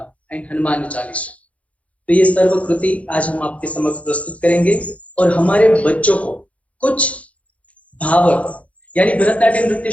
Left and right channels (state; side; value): late; right; 0.065 ms